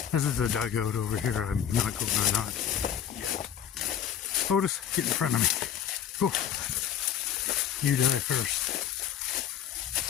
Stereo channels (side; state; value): right; quieter; 9.3 dB